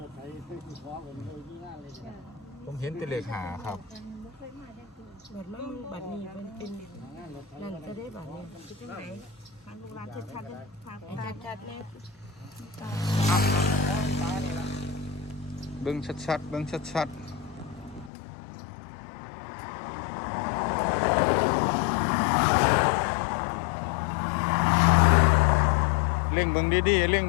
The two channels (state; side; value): drops out; right; at 18.1 s